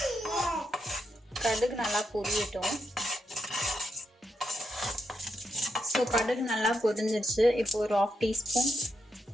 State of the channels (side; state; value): both; normal; correlation 0.83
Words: கடுகு நல்லா பொரியட்டும். ஸோ கடுகு நல்லா பொரிஞ்சிருச்சு. இப்போ ஒரு 1/2 டீஸ்பூன்